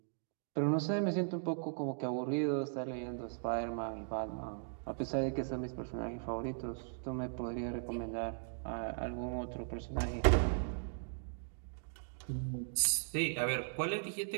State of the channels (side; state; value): left; silent; digital silence